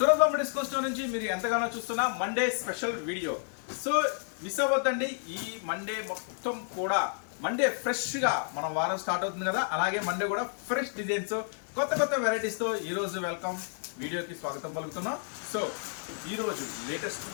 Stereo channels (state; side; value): silent; right; digital silence